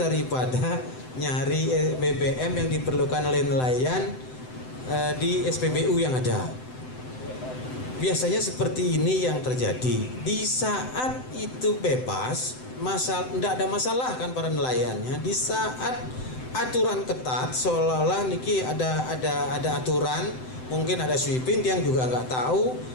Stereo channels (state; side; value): late; right; 7.8 ms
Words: nyari BBM yang diperlukan oleh nelayan di SPBU yang ada. Biasanya seperti ini yang terjadi. Di saat itu bebas, tidak ada masalah kan para nelayannya. Di saat aturan ketat, seolah-olah niki ada aturan. Mungkin ada sweeping yang juga nggak tahu,